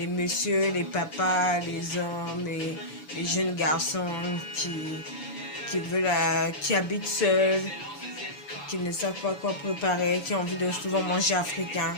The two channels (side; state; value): right; late; 6.9 ms